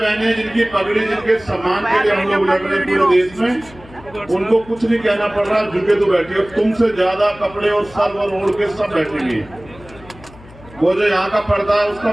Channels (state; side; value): noise; left; hum, 21 dB below the sound